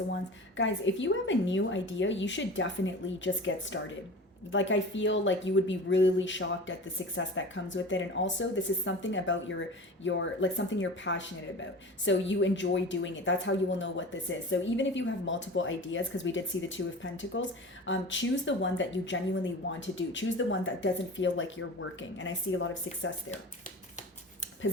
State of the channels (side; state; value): both; normal; correlation 0.35